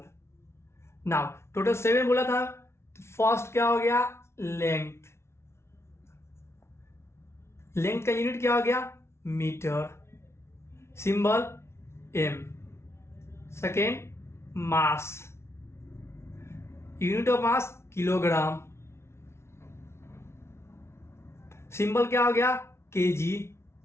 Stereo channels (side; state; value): right; late; 0.13 ms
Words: Now total 7 बोला था। फर्स्ट क्या हो गया, लेंथ। लेंथ का यूनिट क्या हो गया, metre. Symbol M. Second mass, unit of mass kilogram. Symbol क्या हो गया, केजी।